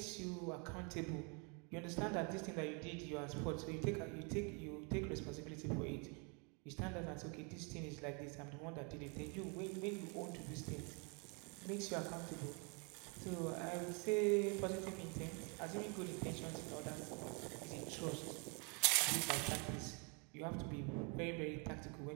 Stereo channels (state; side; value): quieter; left; 34.4 dB